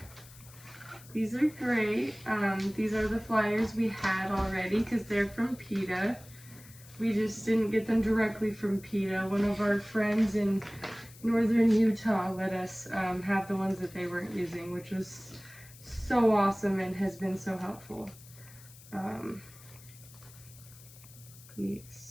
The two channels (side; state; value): left; noise; hiss, 21 dB below the sound